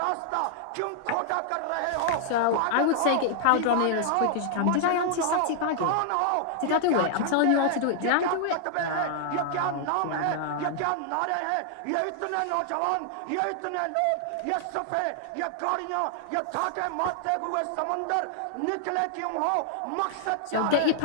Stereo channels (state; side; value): different; both; correlation -0.01